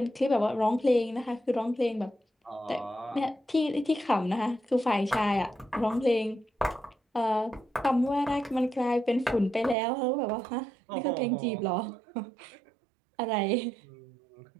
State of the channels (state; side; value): drops out; left; at 9.8 s